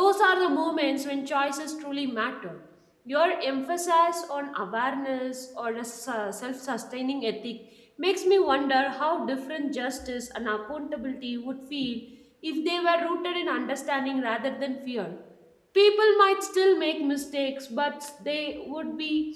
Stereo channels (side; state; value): both; identical; correlation 1.00